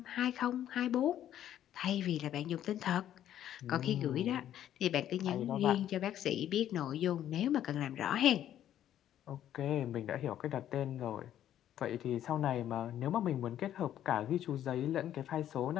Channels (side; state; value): right; quieter; 11.3 dB